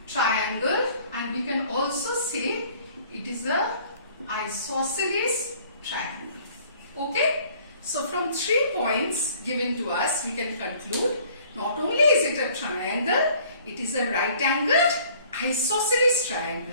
triangle, and we can also say it is a isosceles triangle. Okay? So from 3 points given to us, we can conclude not only is it a triangle, it is a right angled isosceles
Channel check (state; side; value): inverted; both; correlation -0.55